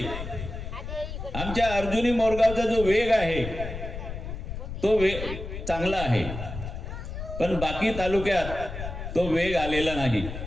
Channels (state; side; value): noise; left; rumble, 7 dB below the sound